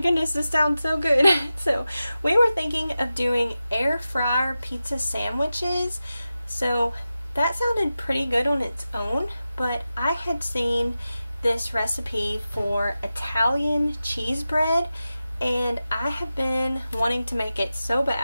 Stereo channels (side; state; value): both; inverted; correlation -0.93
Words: this sounds so good. So we were thinking of doing air fryer pizza sandwiches. So that sounded pretty good on its own, but I had seen this recipe for Italian cheese bread, and I have been wanting to make it so